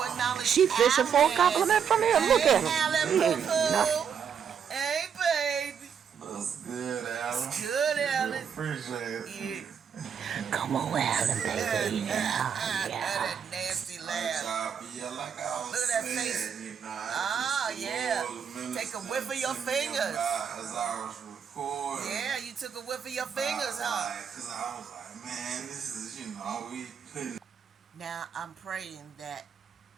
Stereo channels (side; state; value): left; quieter; 7.4 dB